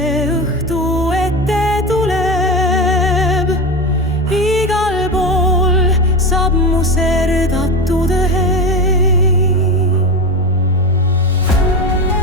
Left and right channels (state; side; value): normal; both; correlation 0.21